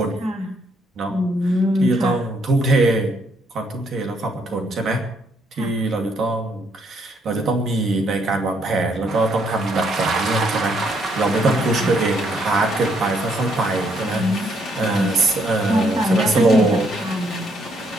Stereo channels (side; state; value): both; normal; correlation 0.71